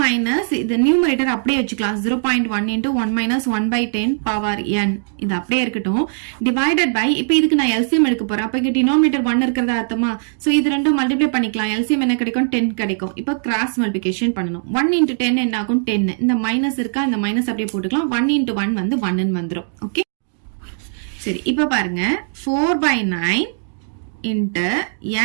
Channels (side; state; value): left; silent; digital silence